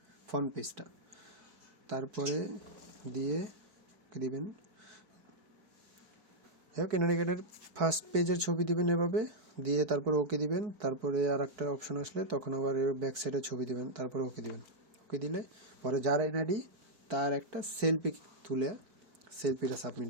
ফ্রন্ট পেজটা, তারপরে দিয়ে দিবেন, এনআইডি কার্ডের ফার্স্ট পেজের ছবি দিবেন এভাবে দিয়ে, তারপরে ওকে দিবেন। তারপরে আর একটা অপশন আসলে তখন আবার ব্যাক সাইডের ছবি দিবেন, তারপরে ওকে দিবেন। ওকে দিলে পরে যার এনআইডি তার একটা সেলফি তুলে সেলফিটা সাবমিট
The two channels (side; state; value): left; late; 4.7 ms